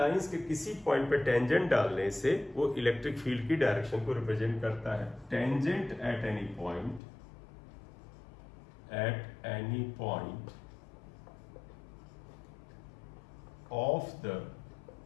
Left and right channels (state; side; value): drops out; right; at 7.0 s